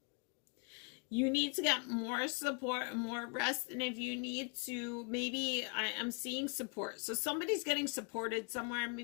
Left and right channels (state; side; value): quieter; right; 36.6 dB